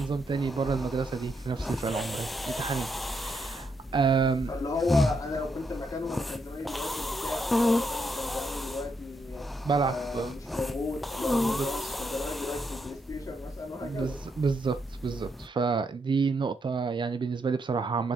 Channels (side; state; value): both; normal; correlation 0.79